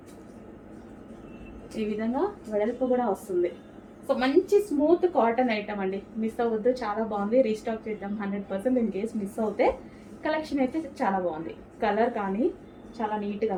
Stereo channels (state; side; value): identical; both; correlation 1.00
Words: ఈ విధంగా వెడల్పు కూడా వస్తుంది. సో మంచి స్మూత్ కాటన్ ఐటమ్ అండి, మిస్ అవ్వద్దు, చాలా బాగుంది. రీస్టాక్ చేద్దాం 100%. ఇన్ కేస్ మిస్ అవుతే కలెక్షన్ అయితే చాలా బాగుంది, కలర్ కానీ చాలా నీట్గా